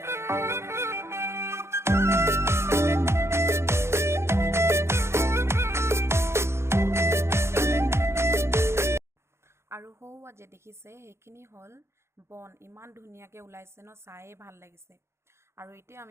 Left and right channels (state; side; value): late; left; 0.13 ms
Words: আৰু হৌৱা যে দেখিছে সেইখিনি হল বন ইমান ধুনীয়াকৈ ওলাইছে ন চায়ে ভাল লাগিছে। আৰু এতিয়া